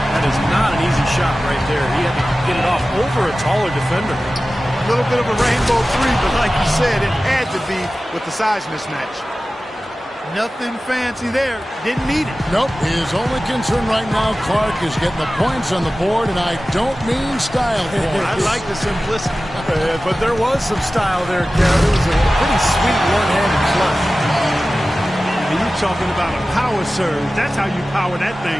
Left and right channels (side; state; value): both; normal; correlation 0.96